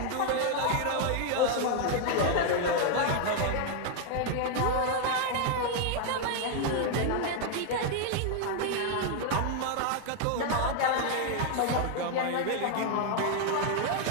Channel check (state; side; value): different; both; correlation 0.00